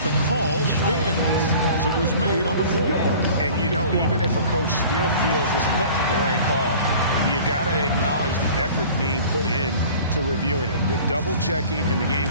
the call stands as it was made on the floor. And, you know, even if a coach still feels this wasn't the right call, you got to acknowledge the effort being put in to reviewing it. The double-checking and the game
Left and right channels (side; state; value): both; inverted; correlation -0.45